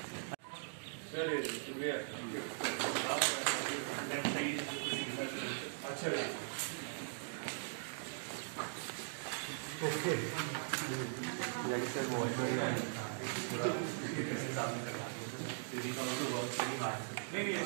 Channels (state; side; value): silent; left; digital silence